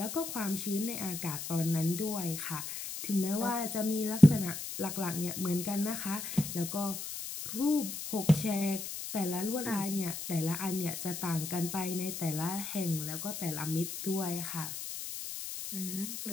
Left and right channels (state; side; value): noise; left; hiss, 7 dB below the sound